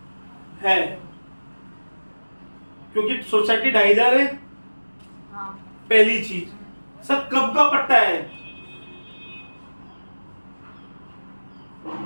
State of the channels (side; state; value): both; inverted; correlation -1.00